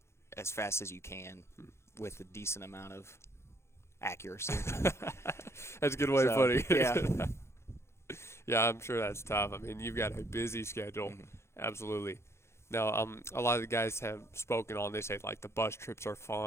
as fast as you can with a decent amount of accuracy. That's a good way of putting it. Yeah. Yeah, I'm sure that's tough. I mean, you've got a busy schedule. Mm-hmm. Absolutely. Now, a lot of the guys have spoken on, they say, like, the bus trips are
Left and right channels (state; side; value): late; right; 0.13 ms